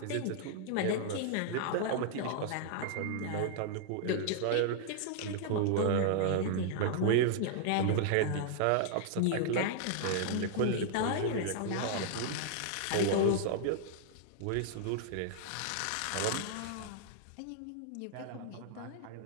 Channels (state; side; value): different; both; correlation -0.01